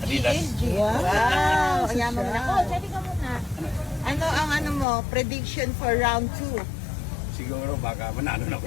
Wow! Ang yaman mo na. Oh, sabi ka muna. Ano ang mo, prediction for round 2? Siguro baka manalo na ako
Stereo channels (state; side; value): drops out; right; at 4.9 s